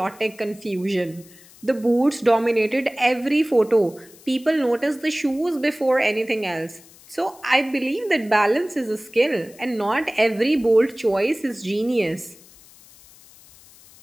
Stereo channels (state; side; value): noise; left; hiss, 24 dB below the sound